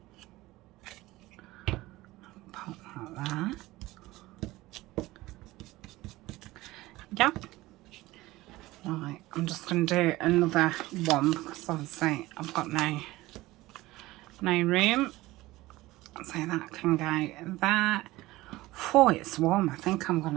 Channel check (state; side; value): quieter; left; 18.6 dB